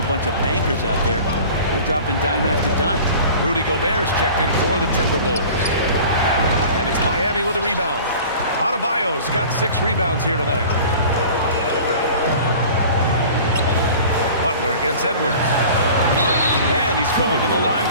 a bunch of bankers out there. They're dropping dime after dime. Rudy Gobert's checked in for the Timberwolves. And it's Miami with a rebound. Adebayo's got 6 rebounds here tonight. Butler against Edwards. And he's going to the line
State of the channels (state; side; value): inverted; both; correlation -0.42